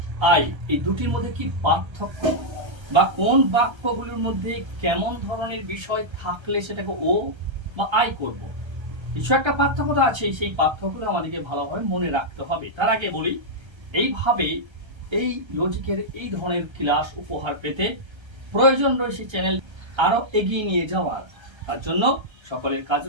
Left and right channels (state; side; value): late; left; 1.3 ms